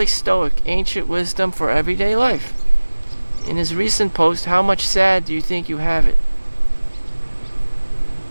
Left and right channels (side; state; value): both; inverted; correlation -1.00